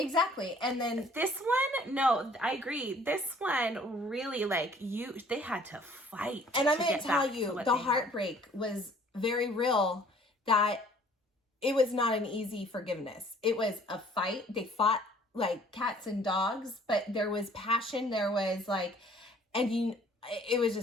And then this one, no, I agree. This one really, like, they had to fight. And I'm going to tell you, the heartbreak was very real, that it was not an easy forgiveness. It was a fight. They fought like cats and dogs, but there was passion. There was like, it was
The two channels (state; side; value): normal; both; correlation 0.56